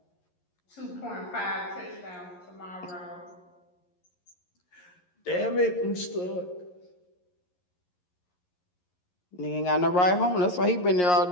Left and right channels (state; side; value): late; right; 11 ms